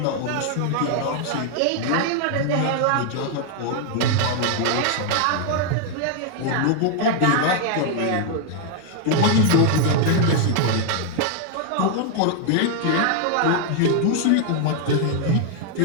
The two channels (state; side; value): different; both; correlation 0.00